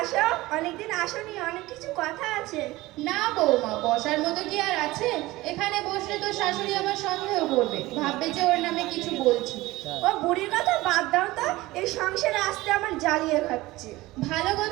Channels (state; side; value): quieter; left; 19.1 dB